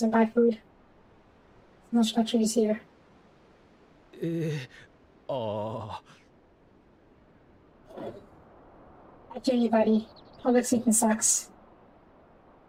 and buy food. No structures here. ああ I hear you, buddy. Public speaking sucks.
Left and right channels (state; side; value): identical; both; correlation 1.00